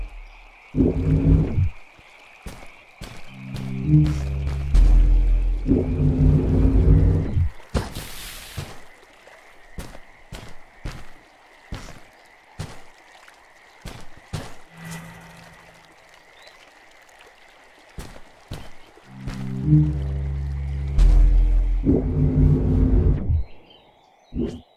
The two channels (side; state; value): both; identical; correlation 1.00